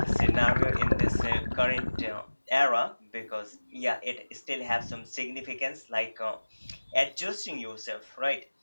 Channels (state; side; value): inverted; both; correlation -1.00